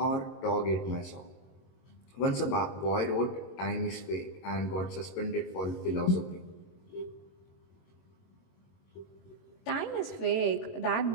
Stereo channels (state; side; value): late; right; 21 ms